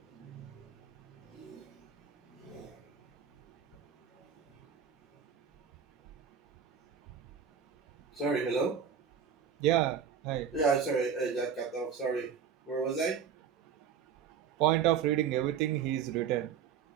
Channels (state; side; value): quieter; left; 7.5 dB